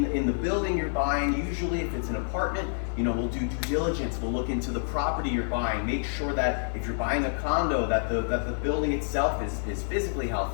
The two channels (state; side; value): silent; right; digital silence